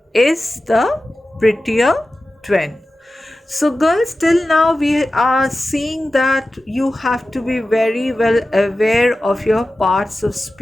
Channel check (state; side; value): normal; both; correlation 0.94